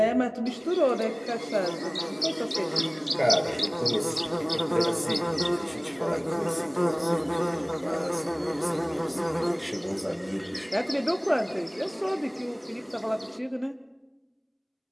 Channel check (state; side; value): identical; both; correlation 1.00